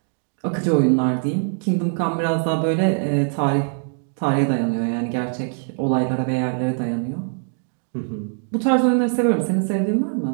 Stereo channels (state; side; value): silent; left; 56 dB below the other